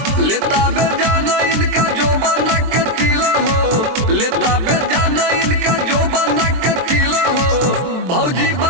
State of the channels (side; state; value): left; late; 23 ms